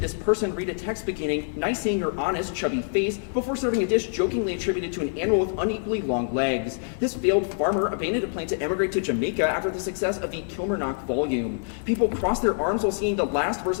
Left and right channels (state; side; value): silent; right; 61 dB below the other